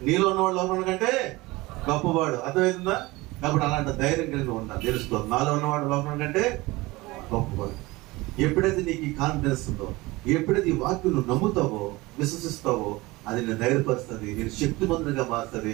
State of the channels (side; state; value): left; quieter; 21.4 dB